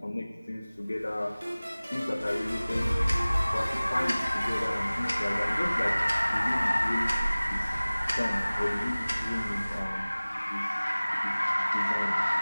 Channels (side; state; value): both; inverted; correlation -0.99